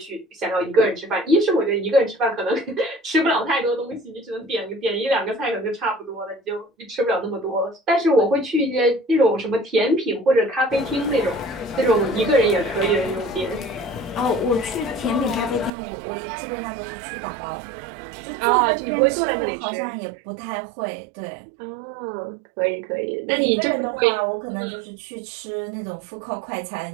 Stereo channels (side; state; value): left; drops out; at 15.7 s